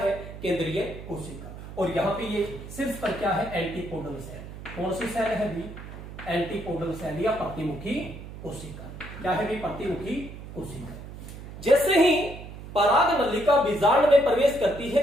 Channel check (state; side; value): noise; right; hum, 12 dB below the sound